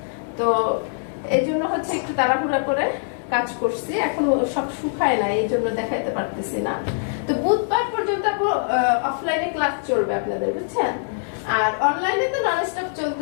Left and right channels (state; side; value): silent; right; 63 dB below the other